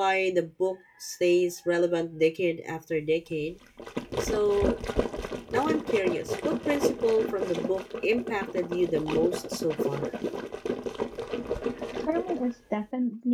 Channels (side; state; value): both; identical; correlation 1.00